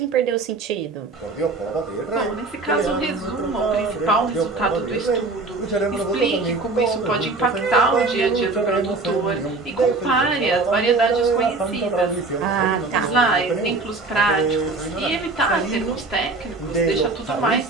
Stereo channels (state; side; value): quieter; left; 3.6 dB